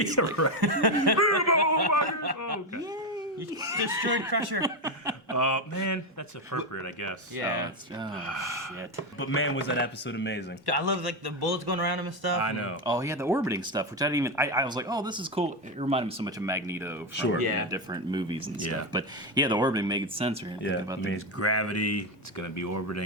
Okay. You destroyed Crusher. Man, that's appropriate, I guess. Yeah. Shit. But man, was that episode amazing. I love like the bullets going around him and stuff. I know. Oh yeah, the orbiting stuff, which I didn't even. I was like, oh, this is cool. It reminded me so much of Magneto from Sure. Yeah. different movies and Yeah. stuff. But yeah, the orbiting made sense. Right? Yeah, About it's gravity. It's gonna be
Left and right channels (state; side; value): normal; both; correlation 0.11